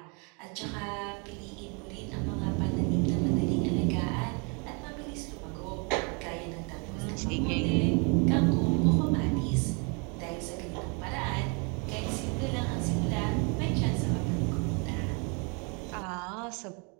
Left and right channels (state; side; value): quieter; left; 34.0 dB